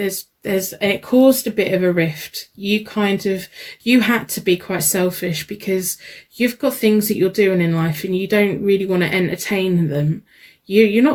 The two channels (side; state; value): both; identical; correlation 1.00